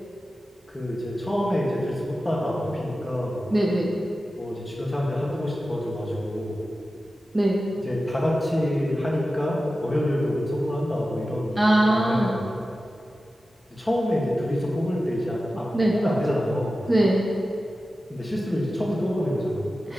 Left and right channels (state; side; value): normal; both; correlation 0.94